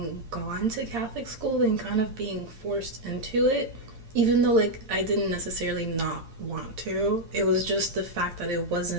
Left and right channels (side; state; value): left; late; 8.7 ms